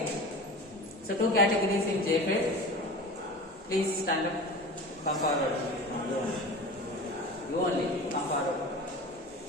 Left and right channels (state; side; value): normal; both; correlation 0.34